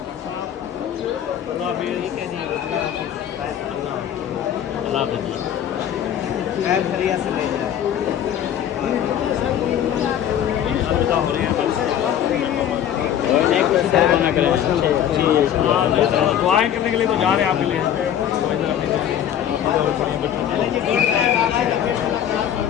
दुआएं करने के लिए तो जा रहे हैं आपके लिए।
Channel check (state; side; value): quieter; right; 10.0 dB